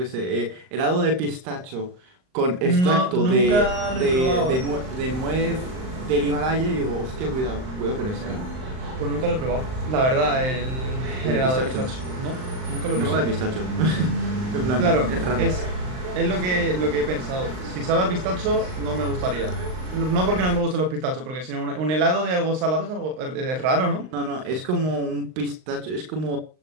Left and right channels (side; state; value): left; late; 39 ms